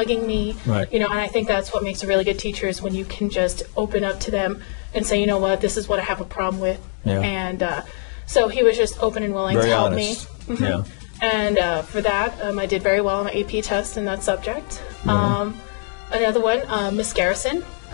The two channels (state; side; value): silent; right; digital silence